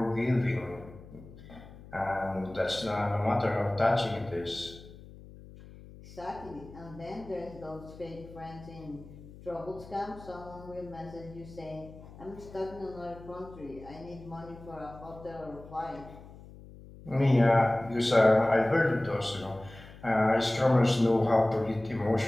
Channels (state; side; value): noise; left; hum, 18 dB below the sound